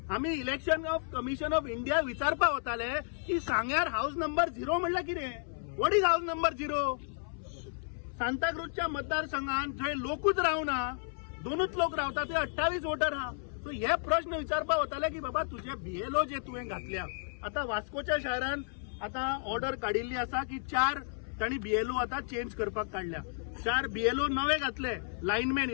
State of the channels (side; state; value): right; silent; 56 dB below the other